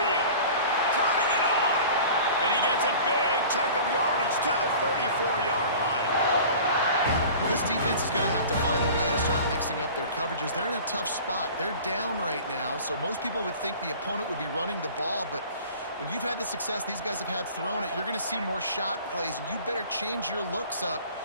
Turning it on. And he gets a big chunk of yardage to the 34-yard line. This defense is going to have to find a way to start mixing up their coverages. They're in a tough spot. They're down right now, so most people would think the opponent would be running the ball, but when you've had the success these guys have had throwing it, you're going to see more shot plays, and you better change your looks up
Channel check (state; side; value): inverted; both; correlation -0.42